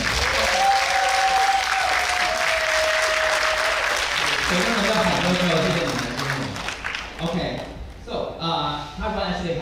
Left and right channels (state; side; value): identical; both; correlation 1.00